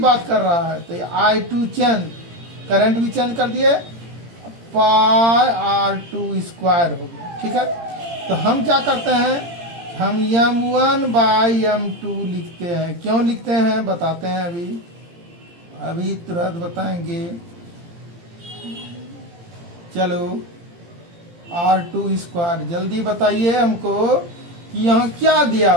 कर रहा है, तो I2 चेंज, करंट भी चेंज कर दिए, पाई R2 स्क्वायर हो गया। ठीक है, तो हम क्या करते हैं, हम m1 बाई m2 लिखते हैं। क्यों लिखते हैं बताते हैं, अभी तुरंत बताएंगे। चलो R2 स्क्वायर, जल्दी बताइए हमको कि यहाँ क्या दिया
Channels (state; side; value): late; left; 18 ms